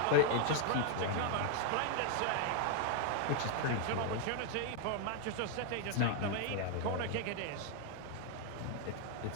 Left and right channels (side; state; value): both; different; correlation 0.00